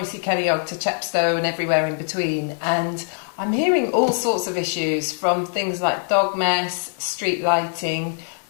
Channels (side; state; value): right; silent; digital silence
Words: Ceiriog to Chepstow and everywhere in between, and I'm hearing all sorts of issues, from things like dog mess, street lighting,